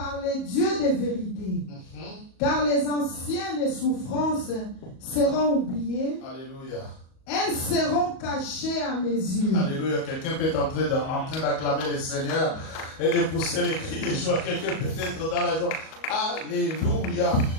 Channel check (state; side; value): late; right; 37 ms